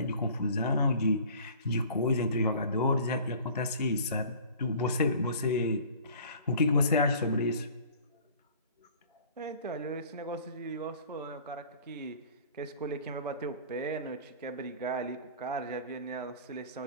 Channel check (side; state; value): both; inverted; correlation -0.47